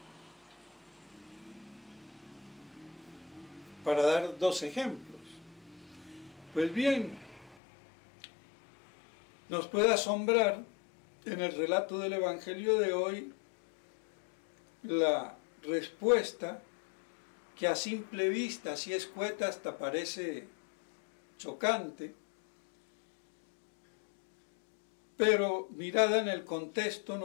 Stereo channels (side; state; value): right; drops out; at 7.6 s